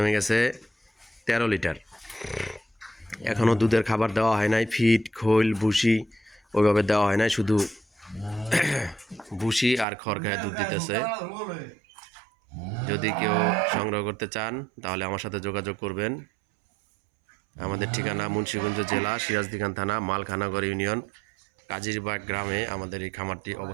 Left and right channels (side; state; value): left; drops out; at 9.9 s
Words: গেছে 13 লিটার। এখনও দুধের খাবার দেওয়া হয় নাই, ফিড খৈল ভুসি ওইভাবে দেওয়া হয় নাই, শুধু ভুসি আর খড় খায় দুধ দিতেছে। যদি কেউ সংগ্রহ করতে চান তাহলে আমার সাথে যোগাযোগ করবেন। আমাদের ঠিকানা মুন্সিগঞ্জ জেলা, সিরাজদিখান থানা, মালখানাগড় ইউনিয়ন, কাজিরবাগ গ্রামে আমাদের এই খামারটি